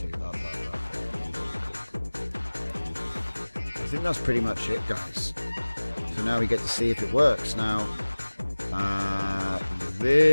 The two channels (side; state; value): both; inverted; correlation -1.00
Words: Up. I think that's pretty much it, guys. So now we get to see if it works. Now,